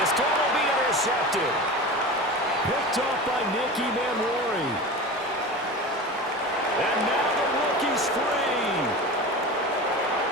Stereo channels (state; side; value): normal; both; correlation 0.30